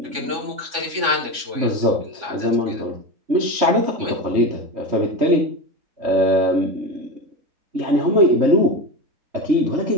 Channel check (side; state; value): left; late; 3.5 ms